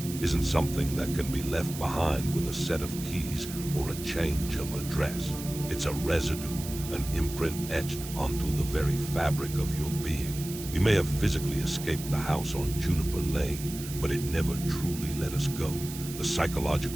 isn't something that can be left behind with a set of keys or a change of address. It's a residue, an imprint etched onto the very fabric of your being. We may have physically escaped the house on Juniper Lane, but it never truly let us go. The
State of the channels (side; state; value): right; noise; hiss, 11 dB below the sound